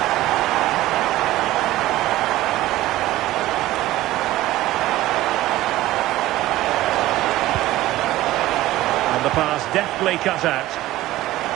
And the pass deftly cut out.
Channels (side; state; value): left; quieter; 16.1 dB